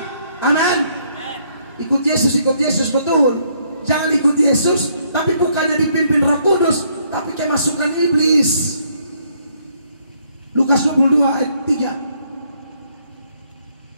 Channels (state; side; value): inverted; both; correlation -0.69